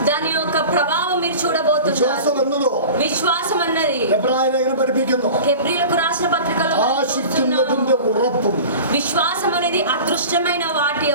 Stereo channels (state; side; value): inverted; both; correlation -0.36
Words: దాని యొక్క ప్రభావం మీరు చూడబోతున్నారు. വിശ്വാസം എന്നതോ విశ్వాసం అన్నది എബ്രായ ലേഖനം പഠിപ്പിക്കുന്നു, హెబ్రీయులకు రాసిన పత్రికలో ആശിക്കുന്നതിന്റെ ഉറപ്പും విశ్వాసం అనేది అదృష్టమైన వాటి